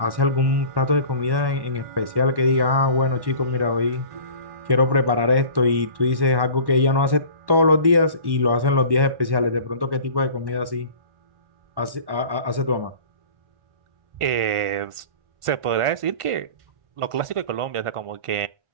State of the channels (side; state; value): left; late; 1.1 ms